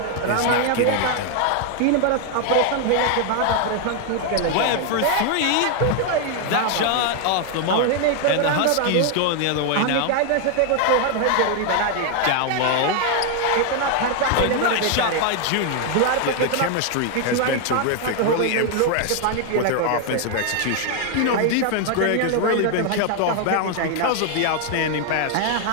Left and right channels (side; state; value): both; different; correlation 0.00